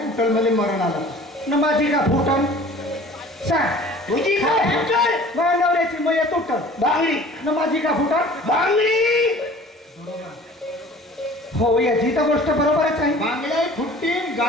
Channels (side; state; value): both; normal; correlation 0.46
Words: उठल मला मरण आलं. न माझी का फुटल सांग तुझी का फुटल माझ्या नवऱ्याची मया तुटल बांगडी न माझी का फुटल बांगडी हो याची तर गोष्ट बरोबरच आहे बांगड्या फुटतील,